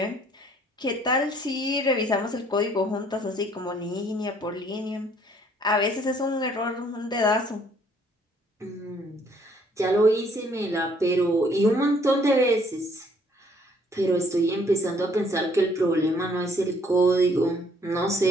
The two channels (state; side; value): normal; both; correlation 0.62